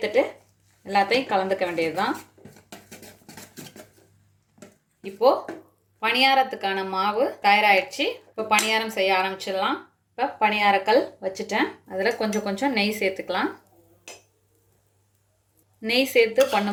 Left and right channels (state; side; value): identical; both; correlation 1.00